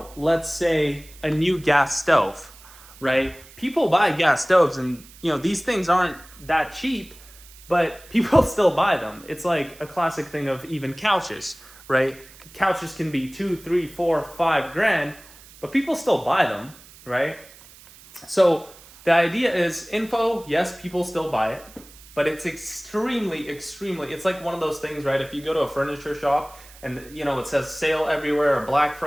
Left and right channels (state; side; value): noise; right; hiss, 22 dB below the sound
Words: say a new gas stove, right? People buy gas stoves and, these things aren't that cheap, but people still buy them. It's like a classic thing of even couches, right? Couches can be $2, $3, $4, $5 but people still buy them, right? So the idea is info, yes, people still buy it, but it's extremely, it's like one of those things, right? If you go to a furniture shop and, it says sale everywhere or Black